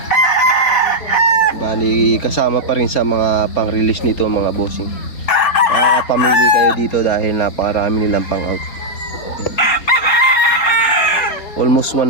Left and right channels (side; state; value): right; late; 4.1 ms